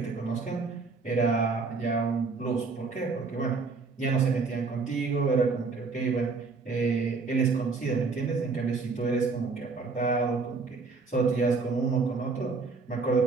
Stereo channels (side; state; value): left; quieter; 4.4 dB